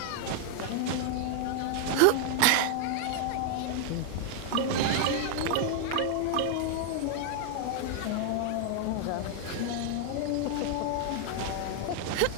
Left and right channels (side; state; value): both; different; correlation 0.00